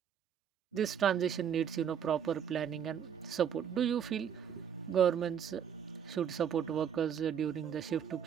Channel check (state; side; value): quieter; left; 8.3 dB